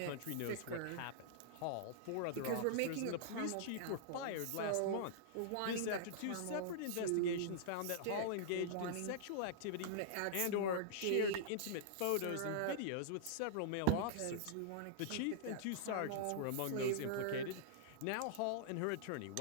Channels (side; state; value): both; different; correlation -0.01